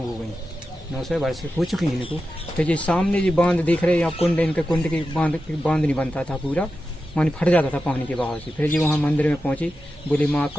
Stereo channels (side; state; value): both; normal; correlation 0.91